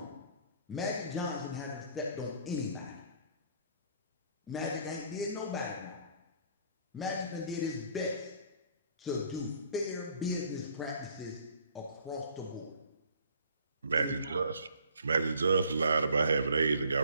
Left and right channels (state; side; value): inverted; both; correlation -0.57